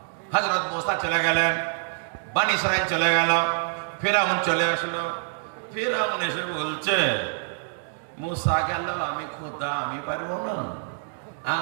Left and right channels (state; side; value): silent; left; digital silence